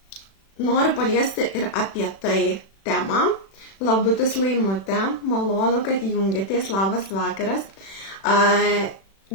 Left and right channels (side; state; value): right; late; 36 ms